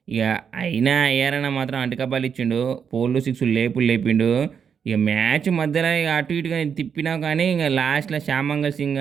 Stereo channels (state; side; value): quieter; left; 7.1 dB